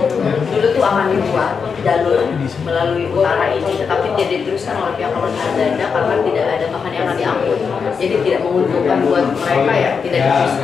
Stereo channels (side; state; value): right; quieter; 5.9 dB